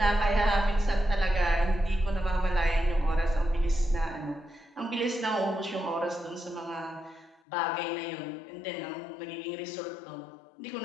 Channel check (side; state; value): right; drops out; at 7.4 s